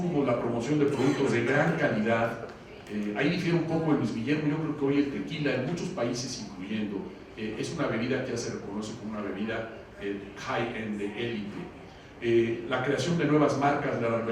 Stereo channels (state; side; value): identical; both; correlation 1.00